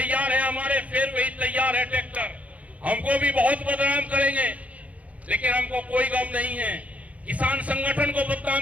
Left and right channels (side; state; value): left; late; 0.068 ms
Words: है हमारे, फिर वही तैयार है ट्रैक्टर। हमको भी बहुत बदनाम करेंगे, लेकिन हमको कोई गम नहीं है। किसान संगठन को